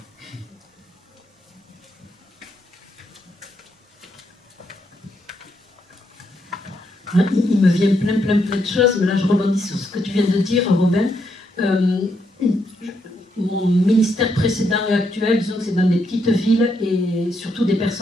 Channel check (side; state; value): both; normal; correlation 0.78